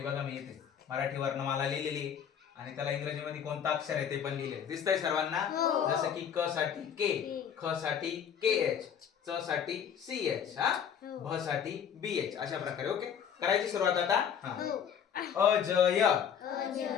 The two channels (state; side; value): quieter; right; 8.2 dB